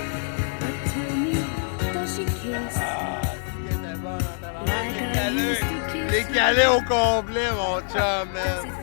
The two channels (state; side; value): silent; right; digital silence